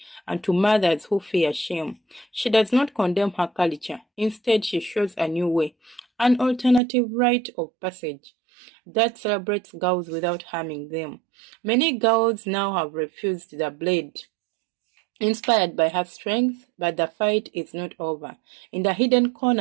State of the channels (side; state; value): left; drops out; at 6.8 s